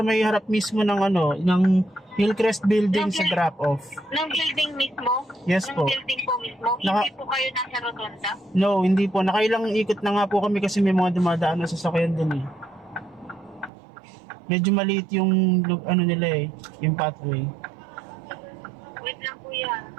may harap mismo ng ng Hillcrest building sa drop off. Ng building mismo? Yes Ng po. building po mismo? Naka- Hindi po kayo nasa rotonda? No, hindi po. Nakailang ikot na nga po kami kasi may mga dumadaan na sasakyan dun eh. Medyo maliit yung nila eh, yung pathway. Wait lang kuya.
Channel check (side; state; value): left; drops out; at 13.7 s